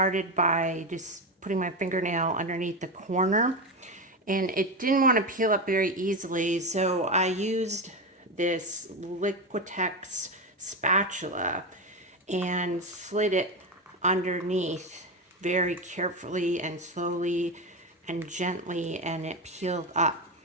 by just putting my fingernail underneath the corner, and it didn't want to peel up very easily, so I used this Liquitex spatula and slid it underneath very carefully and slowly and gently, and it peeled up.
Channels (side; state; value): both; normal; correlation 0.16